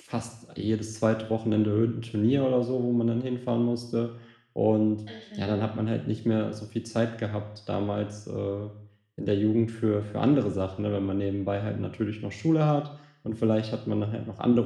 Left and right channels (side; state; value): both; identical; correlation 1.00